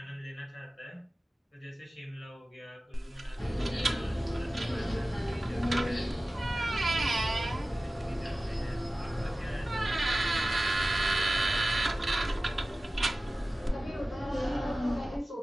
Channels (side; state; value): both; normal; correlation 0.97